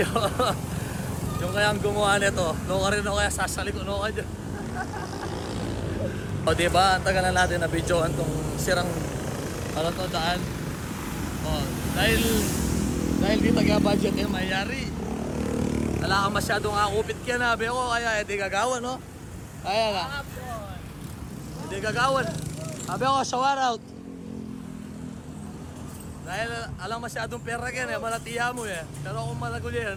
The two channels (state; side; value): identical; both; correlation 1.00